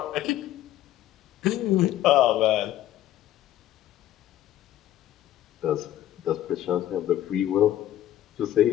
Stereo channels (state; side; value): quieter; right; 13.1 dB